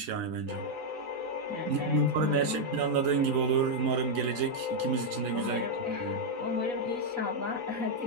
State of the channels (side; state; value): left; late; 4.1 ms